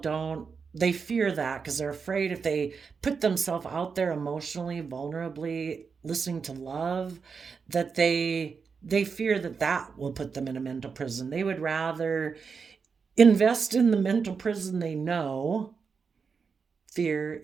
they fear that because they're afraid if they put themselves out there emotionally, vulnerably, listening to love, that they fear that that will put them in a mental prison. They would rather invest in the mental prison they know: fear,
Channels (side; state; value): left; quieter; 5.6 dB